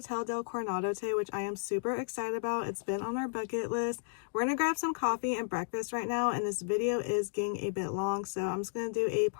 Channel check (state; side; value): silent; right; digital silence